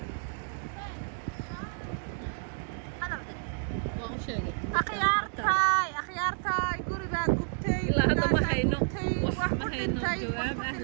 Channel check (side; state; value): left; silent; 58 dB below the other